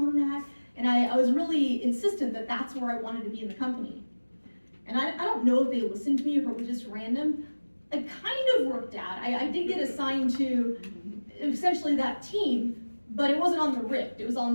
that. And I was really insistent that that's where I wanted to be in the company. And I don't know if they listened to me or if it was just random. It kind of worked out. I did get assigned to essentially that team, but it wasn't on the Rift. It was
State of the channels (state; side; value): inverted; both; correlation -1.00